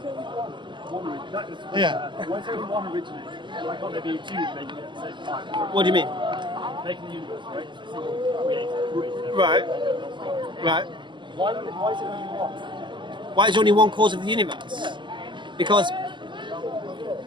Yeah. Why is there only one originator? Why can't there be two making it at the same time? What do you mean? Making the universe, right? It's a single creator. Right. Why is it only one? Why is there only one cause of the universe? Because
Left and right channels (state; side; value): late; left; 0.23 ms